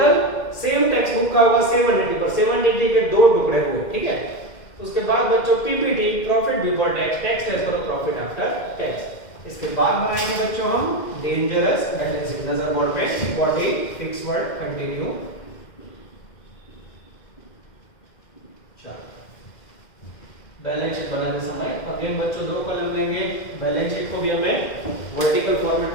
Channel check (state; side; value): late; right; 2.1 ms